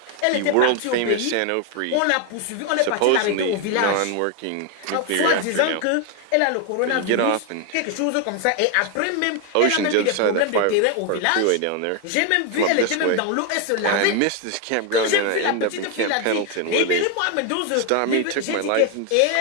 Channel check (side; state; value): both; different; correlation 0.01